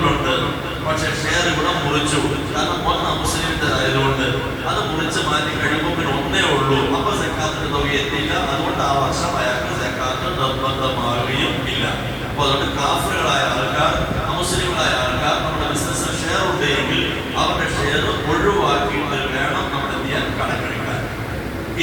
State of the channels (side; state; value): both; identical; correlation 1.00